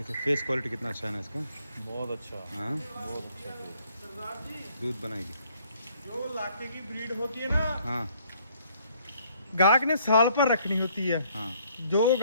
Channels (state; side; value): inverted; both; correlation -0.64